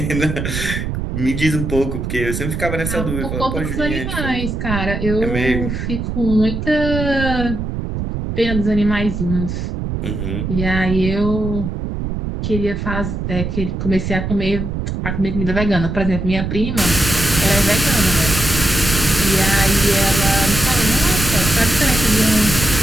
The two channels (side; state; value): right; noise; rumble, 4 dB below the sound